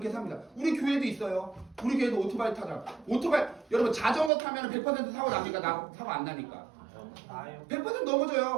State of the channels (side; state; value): left; drops out; at 4.3 s